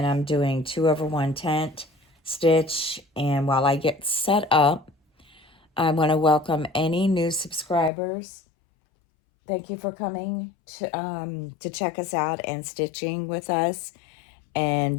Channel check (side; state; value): right; drops out; at 7.9 s